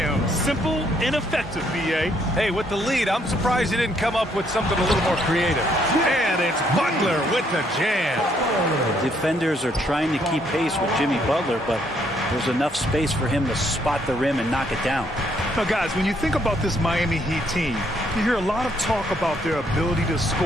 Simple and effective, B.A. Hey, with the lead, I'm surprised he didn't come up with something a little more creative. And it's Butler with the jam. The defenders are trying to keep pace with Jimmy Butler, but there's enough space for him to spot the rim and knock it down. Now, guys, when you think about this Miami Heat team, you hear a lot of talk about their ability to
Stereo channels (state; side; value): normal; both; correlation 0.70